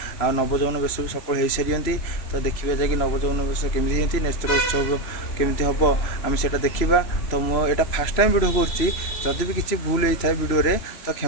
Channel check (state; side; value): late; right; 3.0 ms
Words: आ नवजौवन बेश भी सफल हो सारी। तो देखिए जाकि नवजौवन बेश केमी नेत्र उत्सव केमी हम आम से देखा। तो मुझे फास्ट टाइम वीडियो करुँची भी किसी भूल होता है वीडियो तो